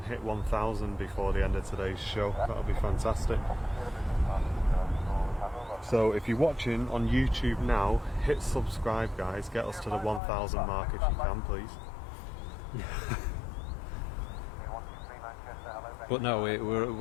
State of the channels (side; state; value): right; drops out; at 10.2 s